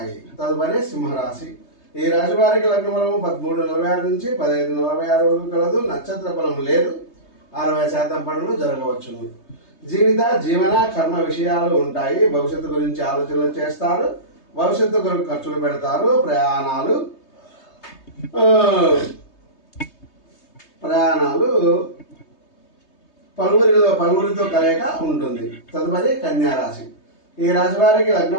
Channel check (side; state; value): right; late; 3.2 ms